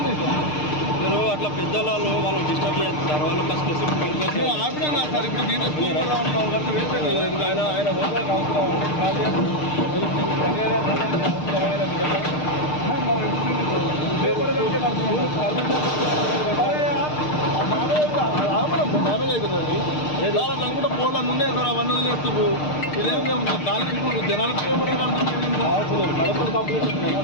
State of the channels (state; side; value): late; right; 6.6 ms